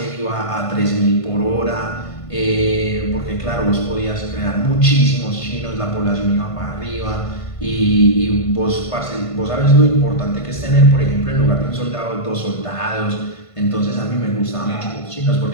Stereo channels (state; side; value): late; right; 1.5 ms